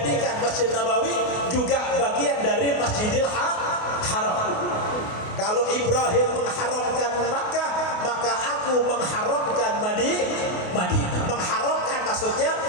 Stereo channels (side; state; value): right; late; 28 ms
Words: Masjid Nabawi juga bagian dari Masjidil Haram. Kalau Ibrahim mengharamkan Makkah, maka aku mengharamkan Madinah. Mengharamkan maksudnya